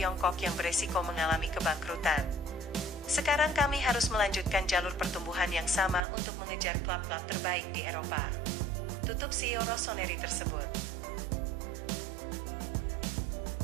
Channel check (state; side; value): drops out; left; at 6.0 s